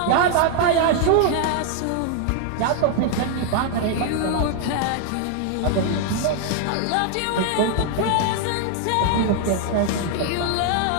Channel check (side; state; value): both; different; correlation 0.00